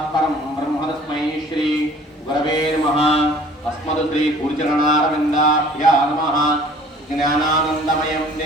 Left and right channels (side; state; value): both; normal; correlation 0.50